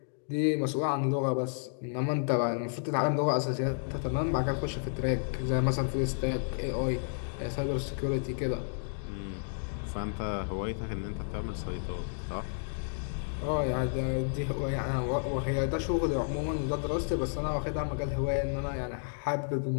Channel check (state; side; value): silent; right; digital silence